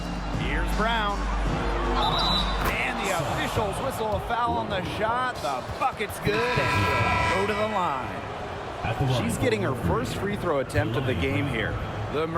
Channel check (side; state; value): both; identical; correlation 1.00